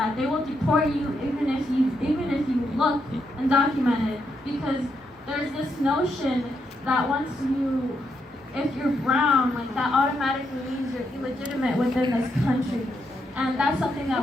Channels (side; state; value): both; normal; correlation 0.80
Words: They will deport you even if you look undocumented, because there's this notion that if you're brown, like that automatically means you're illegitimate within this country, and that's something